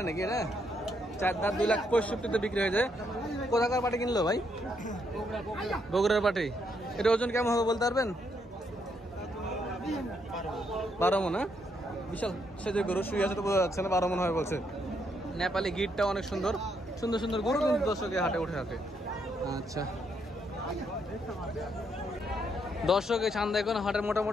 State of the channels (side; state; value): both; normal; correlation 0.75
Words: নাকি এটা? 4 দাঁত 2,65,000 বিক্রি হয়ে যায়। কোথাকার পাটি কিনলো ভাই? বগুড়ার পাটি। এটা ওজন কেমন হবে বলতে পারবেন? 12 মন। হ্যাঁ, বিশাল সে যে গরু শুয়ে আছে তো বোঝা যাচ্ছে না, 12 মন হয় বলছে। নেপালি গিটটা অনেক সুন্দর সুন্দর সুন্দর গরু কিন্তু দর্শকের হাটে উঠে থাকে। আচ্ছা দর্শক, এই চান্দাইকোনা হাটের